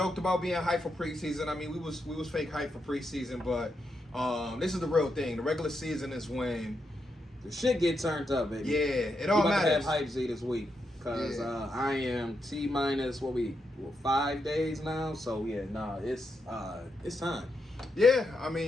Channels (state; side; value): normal; both; correlation 0.83